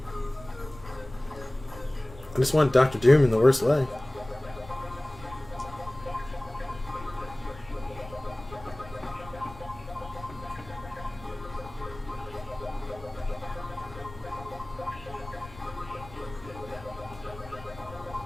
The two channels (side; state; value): left; noise; rumble, 17 dB below the sound